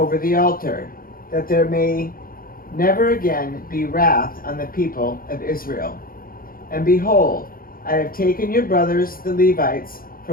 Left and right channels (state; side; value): late; right; 0.42 ms